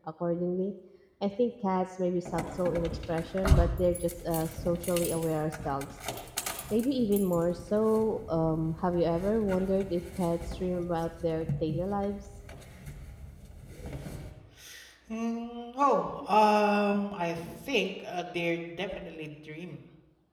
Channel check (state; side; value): identical; both; correlation 1.00